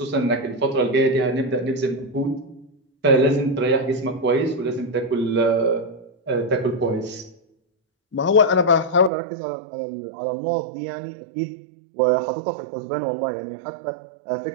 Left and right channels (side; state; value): left; drops out; at 9.1 s